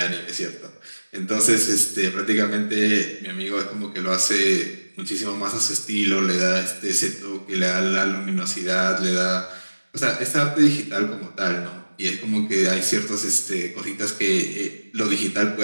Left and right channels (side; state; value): both; inverted; correlation -1.00